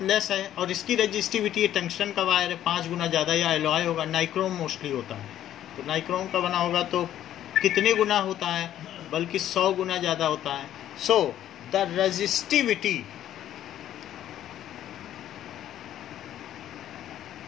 लेस है, और इसकी रेजिस्टिविटी टंगस्टन का वायर है 5 गुना ज़्यादा, या एलॉय होगा, नाइक्रोम मोस्टली होता है। तो नाइक्रोम का बना होगा तो कितने गुना होता है? बल्कि 100 गुना ज़्यादा होता है। So the resistivity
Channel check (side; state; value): right; quieter; 11.7 dB